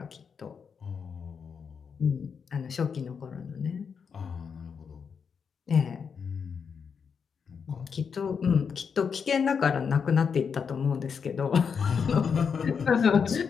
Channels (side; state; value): right; quieter; 6.3 dB